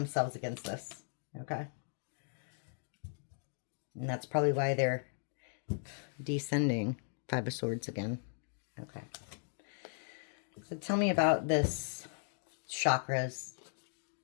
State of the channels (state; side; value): silent; right; digital silence